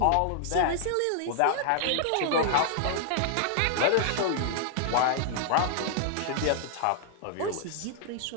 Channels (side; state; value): both; different; correlation 0.00